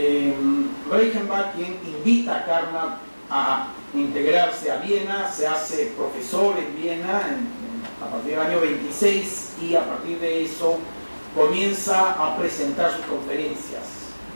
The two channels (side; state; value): both; inverted; correlation -1.00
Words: Reichenbach quien invita a Carnap a integrarse a Viena, se hace profesor en Viena a partir del año 26 y a partir de eso comienza a presentar sus conferencias.